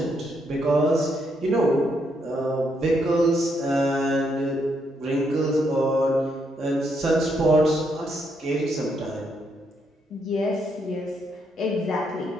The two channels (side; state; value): both; normal; correlation 0.76